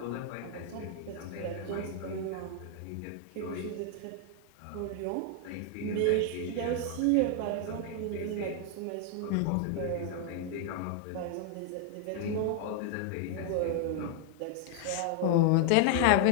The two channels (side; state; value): both; different; correlation 0.00